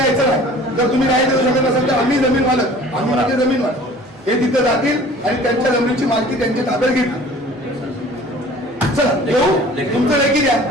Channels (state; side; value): normal; both; correlation 0.48